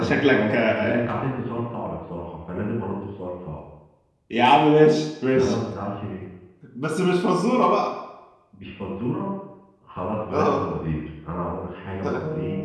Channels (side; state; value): both; identical; correlation 1.00